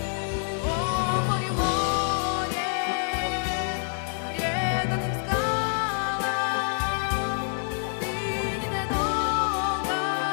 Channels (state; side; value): silent; right; digital silence